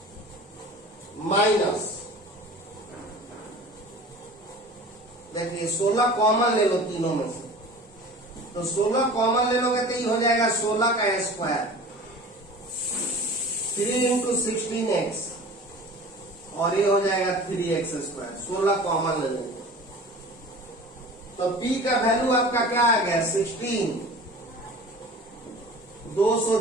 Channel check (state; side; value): normal; both; correlation 0.40